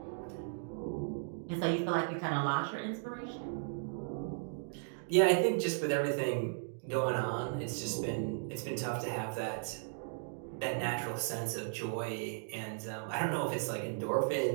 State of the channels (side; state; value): left; silent; digital silence